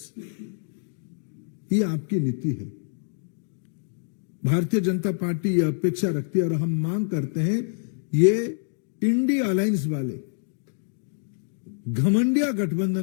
ये आपकी नीति है। भारतीय जनता पार्टी ये अपेक्षा रखती है और हम मांग करते हैं, ये इंडिया अलायंस वाले, घमंडिया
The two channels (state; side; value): silent; right; digital silence